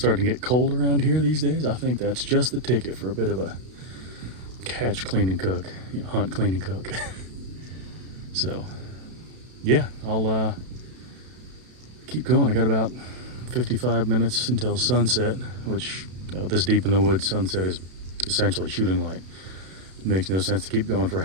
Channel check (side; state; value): left; late; 32 ms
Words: to get cold around here these days, I think that's just the ticket for a bit of a catch, clean, and cook. You know, hunt, clean, and cook. So, yeah, I'll keep going. I got about 55 minutes until sunset, which, you know, this deep in the woods, sunset is essentially shooting light. It makes no sense to keep going for